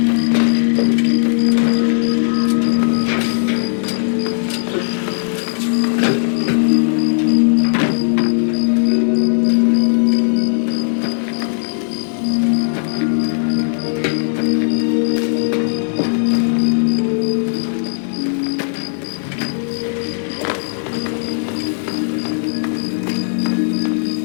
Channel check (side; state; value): right; silent; digital silence